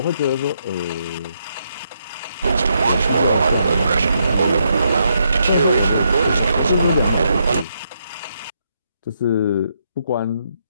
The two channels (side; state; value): both; inverted; correlation -0.78